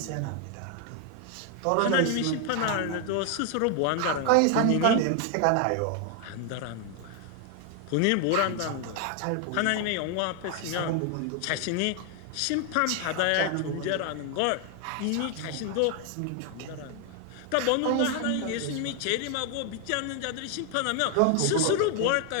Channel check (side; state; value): both; different; correlation 0.00